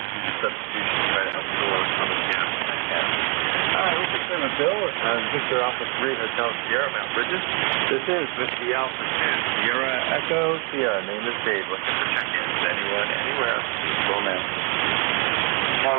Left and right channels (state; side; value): quieter; left; 31.3 dB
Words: substitution try to help you overcome the gap. All right, we'll put in a bill. Victor Alpha 3, Hotel Sierra, Mount Bridges. This is Whiskey Alpha 2, Sierra Echo Sierra. Name is Dave. Looking for check-ins. Anyone, anywhere. Please call now.